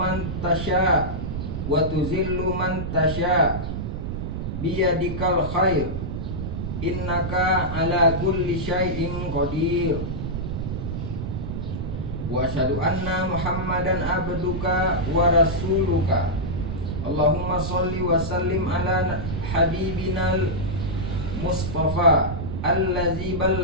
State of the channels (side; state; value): right; noise; rumble, 4 dB below the sound